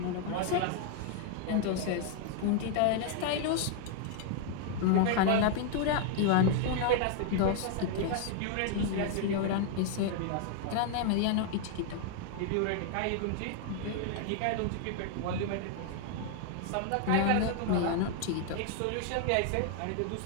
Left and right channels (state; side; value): different; both; correlation 0.00